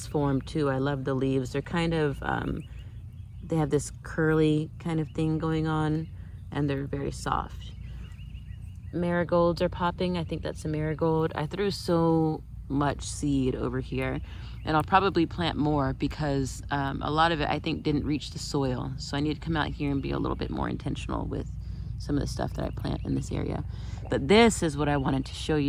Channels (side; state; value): both; identical; correlation 1.00